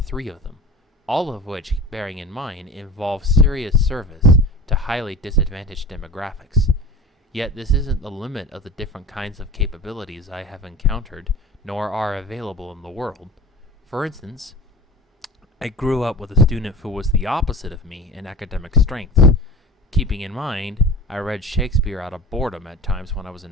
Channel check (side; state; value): both; normal; correlation 0.35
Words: of them, all of which, bearing in mind, involve serious service to highly disadvantaged demographics. Yet this isn't the limit of the different kinds of capabilities I have encountered, nor are available in the world. For instance, I grew up with a student who was the opposite of me in academic strengths. Keeping in mind, I read Shakespeare out of boredom at times when I was